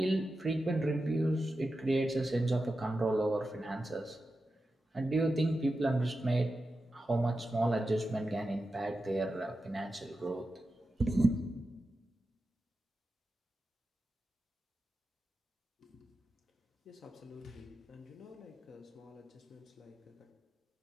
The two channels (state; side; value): normal; both; correlation 0.91